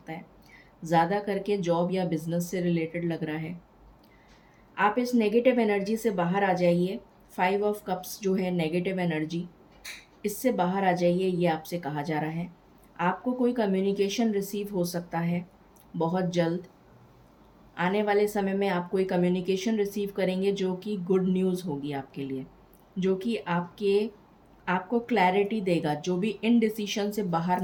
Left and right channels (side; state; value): both; identical; correlation 1.00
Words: है। ज़्यादा करके जॉब या बिज़नेस से रिलेटेड लग रहा है। आप इस नेगेटिव एनर्जी से बाहर आ जाइए। 5 ऑफ कप्स जो है नेगेटिव एनर्जी, इससे बाहर आ जाइए, ये आपसे कहा जा रहा है। आपको कोई कम्युनिकेशन रिसीव हो सकता है बहुत जल्द। आने वाले समय में आप कोई कम्युनिकेशन रिसीव करेंगे जो कि गुड न्यूज़ होगी आपके लिए, जो कि आपको क्लैरिटी देगा, जो भी इनडिसीशन से बाहर